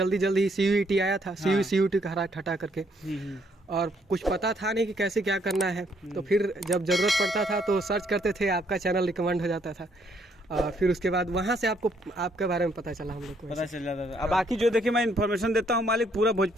जल्दी CUET आया था, CUET का हटा करके, और कुछ पता था नहीं कि कैसे क्या करना है। तो फिर जब ज़रूरत पड़ता था तो सर्च करते थे, आपका चैनल रिकमेंड हो जाता था। फिर उसके बाद वहाँ से आपको आपके बारे में पता चला, हम लोग को पता चल जाता था। अब बाकी जो देखिए मैं इन्फॉर्मेशन देता हूँ मालिक, पूरा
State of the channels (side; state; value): both; normal; correlation 0.69